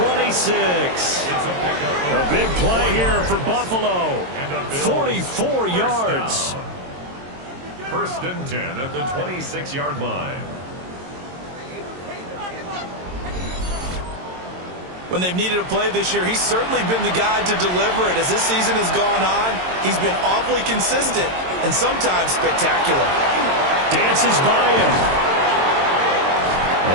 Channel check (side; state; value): left; late; 22 ms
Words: A big play here for Buffalo. 44 yards. First and 10 at the 26-yard line. When they've needed a play this year, he's certainly been the guy to deliver it. As this season has gone on, he's been awfully consistent and sometimes spectacular. Dances by him.